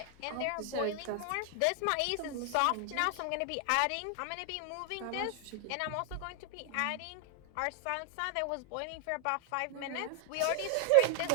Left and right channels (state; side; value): different; both; correlation 0.00